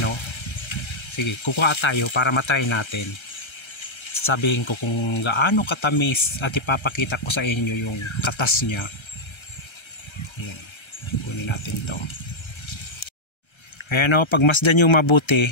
o. Sige, kukuha tayo para matry natin. Sabihin ko kung gaano katamis at ipapakita ko sa inyo yung katas niya. Ayan, kunin natin to. Ayan o, pagmasdan nyo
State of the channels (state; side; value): late; right; 1.3 ms